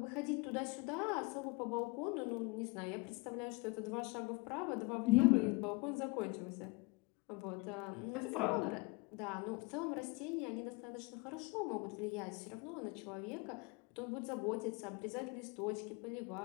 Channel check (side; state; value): right; quieter; 26.6 dB